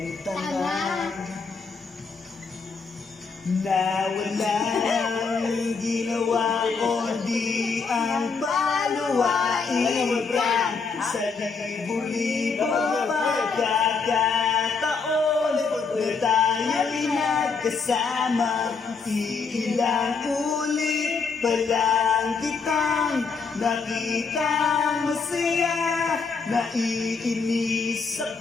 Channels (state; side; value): quieter; right; 5.0 dB